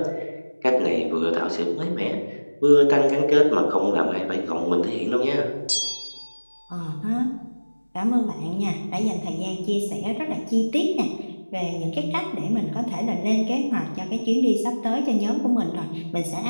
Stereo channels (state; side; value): inverted; both; correlation -1.00